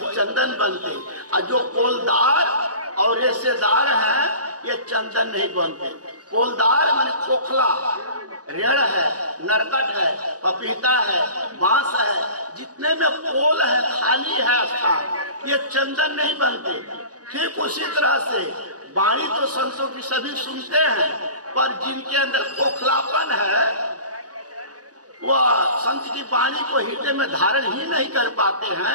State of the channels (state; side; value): late; left; 0.68 ms